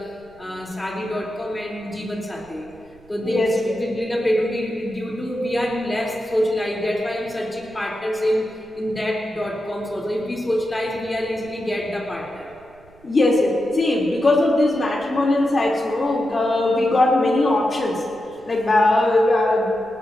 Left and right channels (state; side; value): noise; right; rumble, 26 dB below the sound